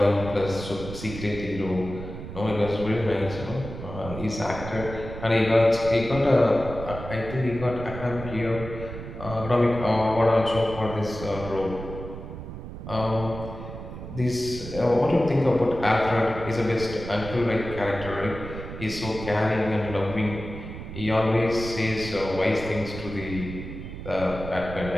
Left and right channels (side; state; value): right; noise; rumble, 10 dB below the sound